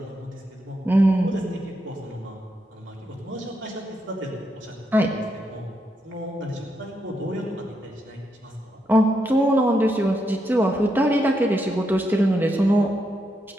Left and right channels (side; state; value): both; normal; correlation 0.81